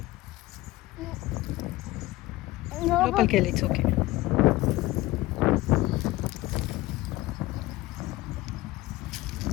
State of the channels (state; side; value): quieter; right; 18.1 dB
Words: లోపలికి వెళ్ళి. It's okay.